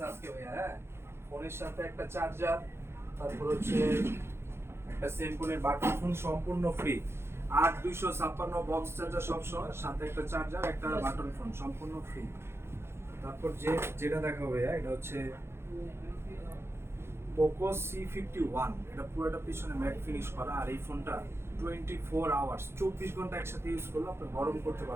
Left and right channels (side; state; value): left; late; 0.12 ms